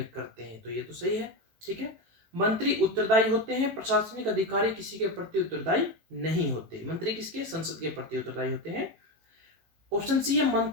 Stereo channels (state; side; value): late; left; 18 ms